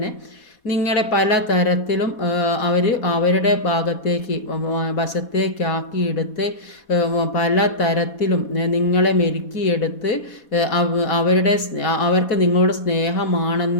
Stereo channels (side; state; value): right; late; 4.2 ms